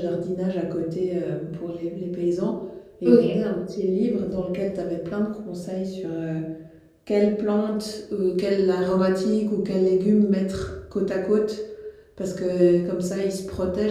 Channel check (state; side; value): identical; both; correlation 1.00